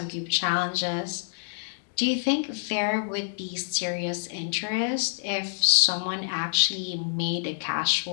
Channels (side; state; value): right; silent; digital silence